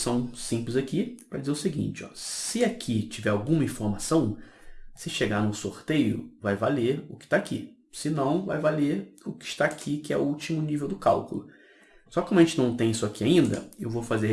simples aqui para dizer o seguinte, ó, se aqui tiver alguma informação, se chegar no sorteio, vai valer o que está aqui. Se não, vai valer o que está aqui, que é o último nível do cálculo. Só que como a gente não tem isso aqui ainda, eu vou fazer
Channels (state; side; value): identical; both; correlation 1.00